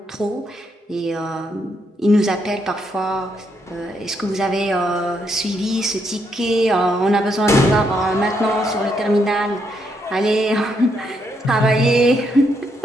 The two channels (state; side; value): normal; both; correlation 0.77